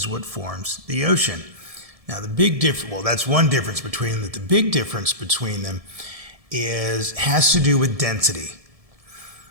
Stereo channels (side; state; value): left; late; 1.7 ms